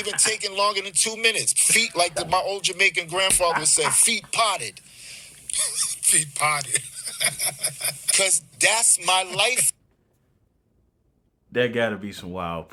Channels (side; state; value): both; identical; correlation 1.00